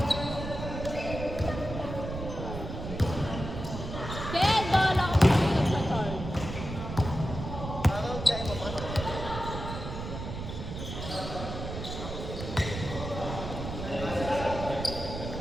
Ken, bahala ka kung sino sa charge.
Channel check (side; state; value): right; noise; rumble, 7 dB below the sound